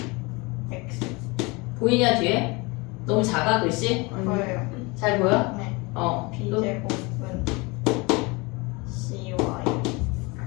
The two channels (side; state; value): right; quieter; 26.3 dB